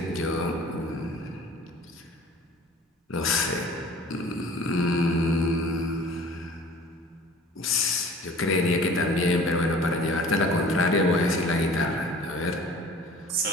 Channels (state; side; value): normal; both; correlation 0.46